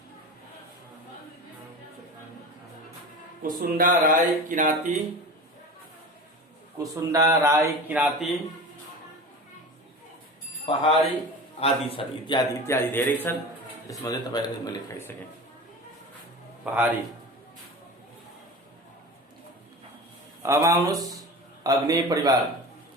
कुसुन्डा राई किराँती, कुसुन्डा राई किराँती, पहाडी आदि छन्, इत्यादि इत्यादि धेरै छन्। त्यसमध्ये तपाईहरुले मैले लेखाइसके। पहाडी। अब आउनुस् अग्नि परिवार।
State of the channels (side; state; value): both; normal; correlation 0.32